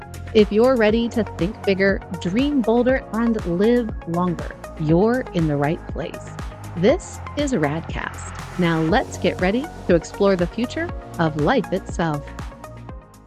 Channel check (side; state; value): both; identical; correlation 1.00